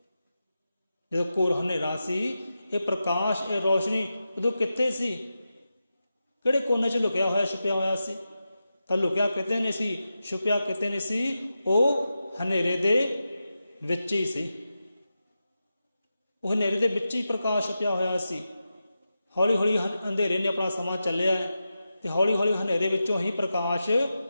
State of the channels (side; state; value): both; inverted; correlation -0.91